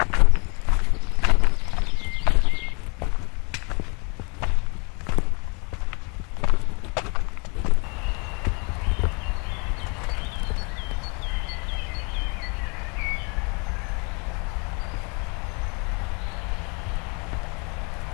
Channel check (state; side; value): quieter; right; 32.5 dB